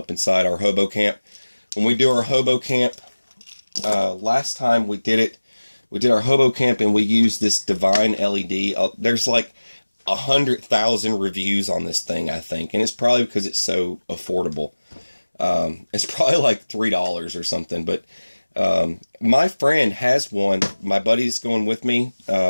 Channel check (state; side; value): inverted; both; correlation -1.00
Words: inside our hobo camp. When we do our hobo camp, last time we did our hobo camp and we used this Divine LED. There's like 100,000 reviews on this thing, I think. And it's probably because it's so affordable. It's probably like $3 or something. But my friend has one. My buddy's going with me,